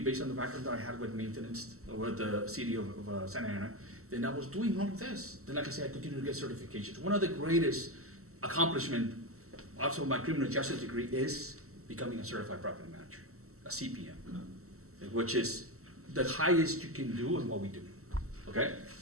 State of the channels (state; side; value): late; left; 0.63 ms